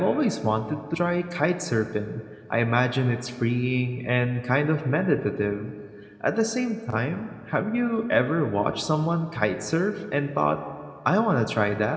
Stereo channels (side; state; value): both; identical; correlation 1.00